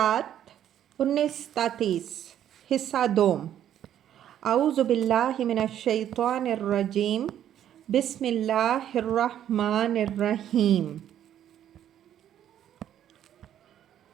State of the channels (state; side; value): quieter; left; 10.7 dB